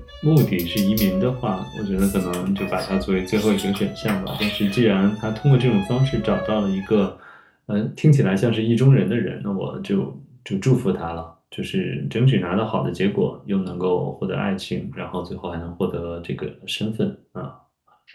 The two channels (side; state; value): both; identical; correlation 1.00